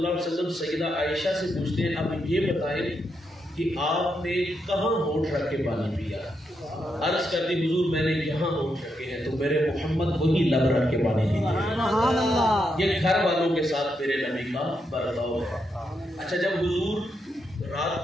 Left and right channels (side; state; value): both; normal; correlation 0.82